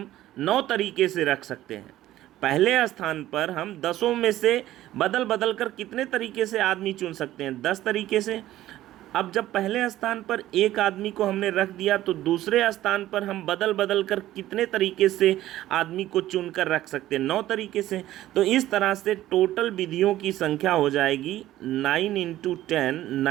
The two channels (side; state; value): left; quieter; 14.4 dB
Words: 9 तरीके से रख सकते हैं। पहले स्थान पर हम 10 में से बदल बदल कर कितने तरीके से आदमी चुन सकते हैं? 10 तरीके से। अब जब पहले स्थान पर एक आदमी को हमने रख दिया, तो दूसरे स्थान पर हम बदल बदल कर कितने तरीके से आदमी को चुनकर रख सकते हैं? 9 तरीके से। तो इस तरह से टोटल विधियों की संख्या हो जाएगी 9 × 10